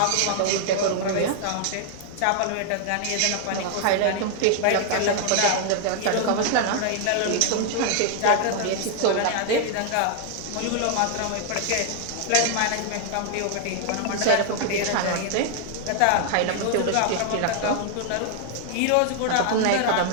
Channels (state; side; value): different; both; correlation 0.00